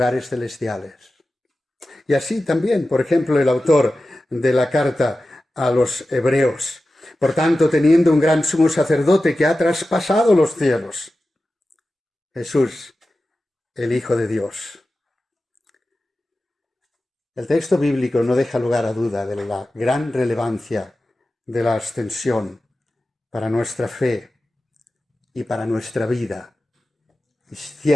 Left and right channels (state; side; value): normal; both; correlation 0.94